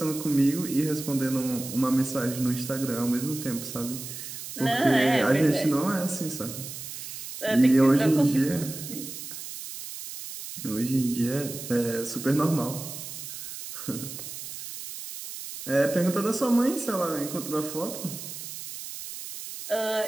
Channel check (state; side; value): noise; right; hiss, 10 dB below the sound